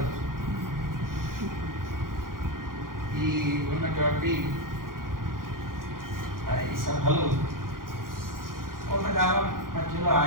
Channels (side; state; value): left; late; 0.91 ms